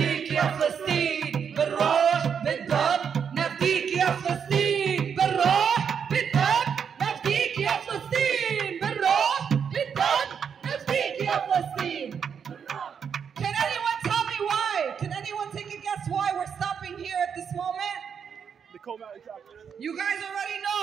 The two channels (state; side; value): quieter; left; 7.1 dB